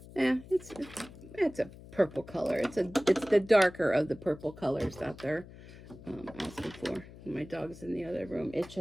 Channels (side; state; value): left; noise; hum, 18 dB below the sound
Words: Yeah, it's a purple color. It's the darker of the purple colors that they're asking for. My dog's in the other room